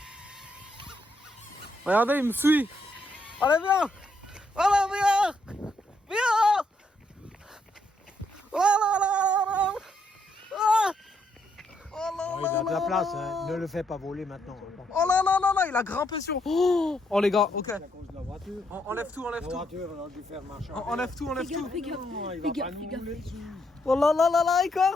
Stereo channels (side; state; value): both; normal; correlation 0.75